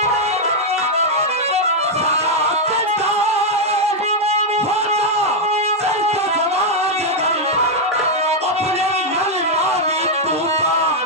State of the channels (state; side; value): normal; both; correlation -0.01